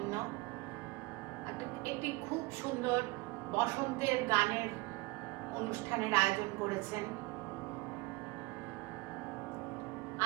একটি খুব সুন্দর বসন্তের গানের অনুষ্ঠানের আয়োজন করেছেন।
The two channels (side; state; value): left; quieter; 23.8 dB